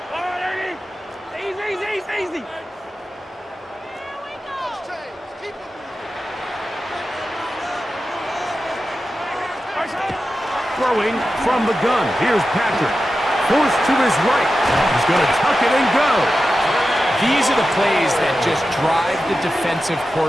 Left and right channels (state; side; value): normal; both; correlation 0.92